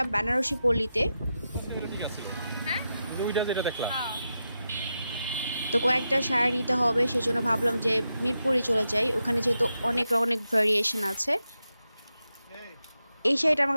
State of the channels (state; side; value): inverted; both; correlation -0.88